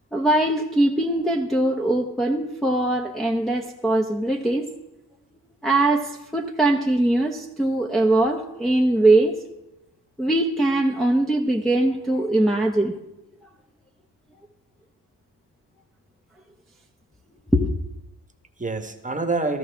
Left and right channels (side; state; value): both; normal; correlation 0.78